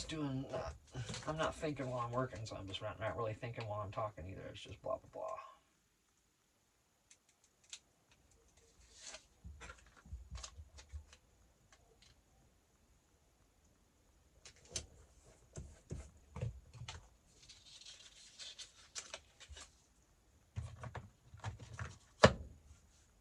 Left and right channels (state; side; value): identical; both; correlation 1.00